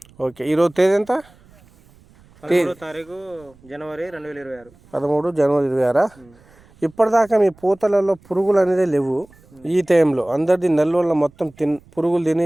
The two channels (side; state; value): right; noise; rumble, 28 dB below the sound